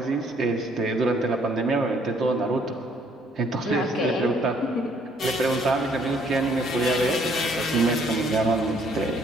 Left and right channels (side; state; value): both; normal; correlation 0.64